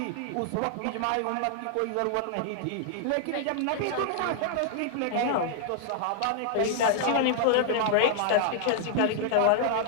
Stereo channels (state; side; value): different; both; correlation 0.00